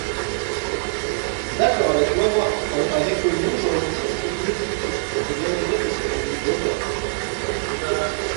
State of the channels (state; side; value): silent; left; 64 dB below the other